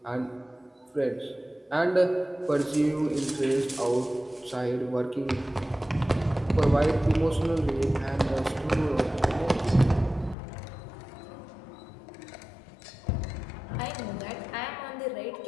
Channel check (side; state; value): right; drops out; at 10.4 s